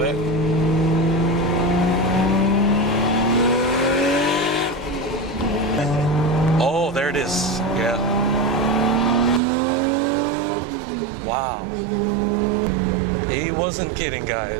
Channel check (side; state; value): left; drops out; at 9.4 s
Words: Oh, there it is. Yeah. Wow. He wasn't kidding,